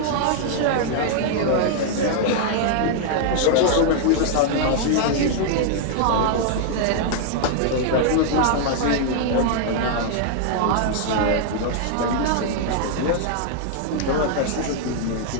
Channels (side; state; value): both; different; correlation -0.01